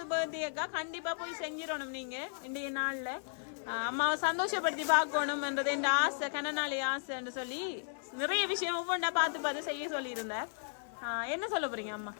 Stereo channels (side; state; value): right; silent; digital silence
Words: பர்த்டேக்கா கண்டிப்பா போய் செஞ்சிடணும். நீங்க இன்றைய நாள்ல அம்மாவை சந்தோஷப்படுத்தி பார்க்கணும்ன்றது என் ஆசை, கனநாளி ஆசைன்னு சொல்லி நிறைய விஷயம் ஒவ்வொன்றா பார்த்து பார்த்து செய்ய சொல்லி இருந்தார். என்ன சொல்ல போறீங்க அம்மா?